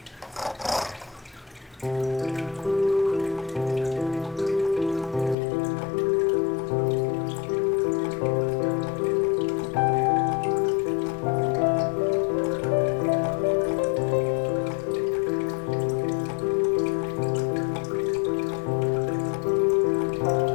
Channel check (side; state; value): right; drops out; at 5.4 s